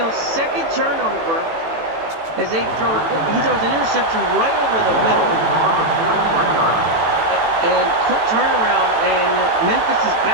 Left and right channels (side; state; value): left; late; 18 ms